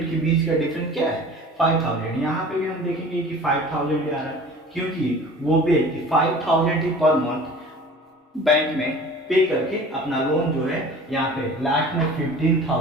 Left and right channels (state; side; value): normal; both; correlation 0.43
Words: के बीच का डिफरेंस क्या है, 5,000। यहाँ पे भी हम देखेंगे कि 5,000 आ रहा है क्योंकि वो व्यक्ति 5,000 ही पर मंथ बैंक में पे करके अपना लोन जो है यहाँ पे लास्ट में